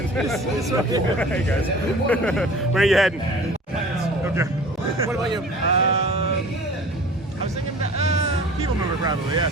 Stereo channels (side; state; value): both; normal; correlation 0.43